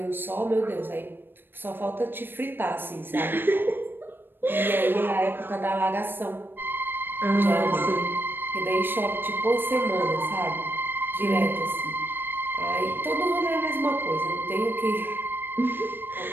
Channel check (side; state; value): left; late; 0.098 ms